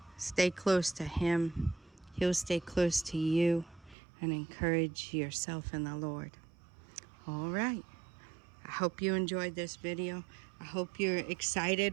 Stay close to Him. He'll stay close to you, and encourage yourself in the Lord. All right. I hope you enjoyed this video. I hope you're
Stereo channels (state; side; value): drops out; left; at 4.0 s